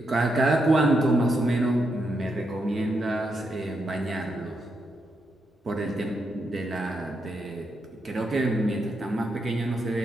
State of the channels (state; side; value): normal; both; correlation 0.82